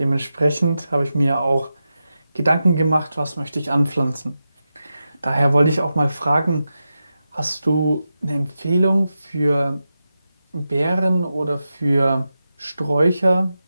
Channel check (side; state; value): both; inverted; correlation -0.91